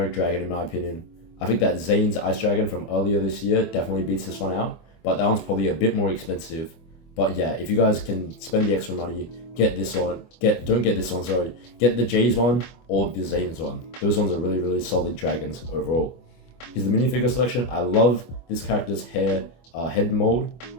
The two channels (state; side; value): late; right; 25 ms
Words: dragon in my opinion. I think that Zane's Ice Dragon from earlier this year definitely beats this one out, but that one's probably a bit more expensive. But yeah, if you guys can spend the extra money, get this one. Don't get this one, sorry. Get the Jay's one or the Zane's one. Those ones are really, really solid dragons overall. Here's the minifigure selection. I love this character's head mold.